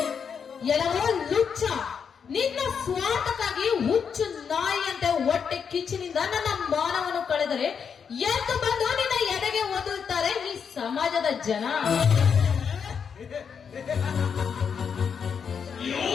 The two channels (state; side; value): quieter; right; 6.7 dB